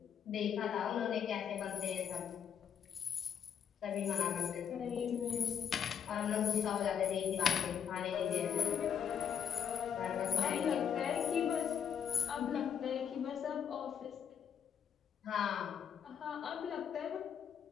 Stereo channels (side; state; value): right; quieter; 8.1 dB